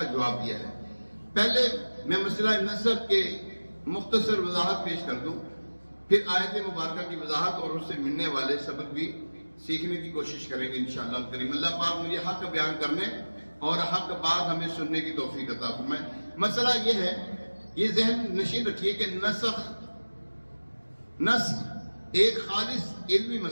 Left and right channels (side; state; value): both; inverted; correlation -1.00